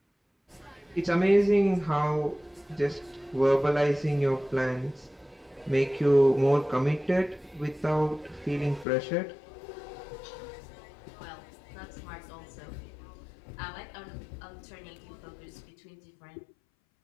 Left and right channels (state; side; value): drops out; right; at 8.8 s